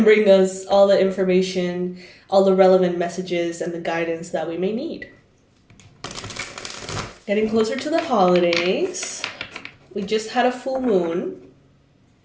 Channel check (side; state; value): both; identical; correlation 1.00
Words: bring us all the information, all the relevant messages, and the guidance that we may need. Getting closer to the holidays. We just had a full moon.